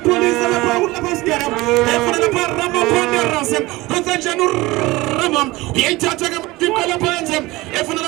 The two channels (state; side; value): quieter; left; 20.4 dB